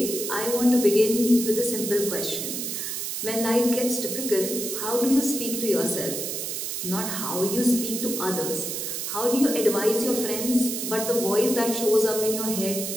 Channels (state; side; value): noise; right; hiss, 4 dB below the sound